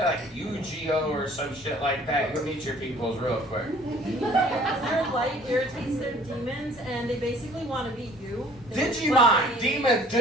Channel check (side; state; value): both; normal; correlation 0.54